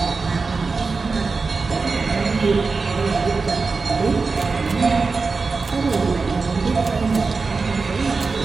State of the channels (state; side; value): quieter; left; 4.3 dB